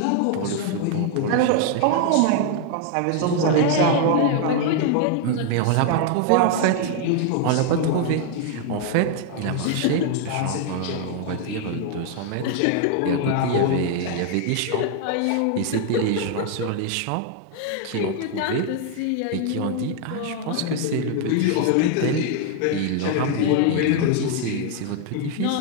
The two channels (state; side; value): different; both; correlation 0.00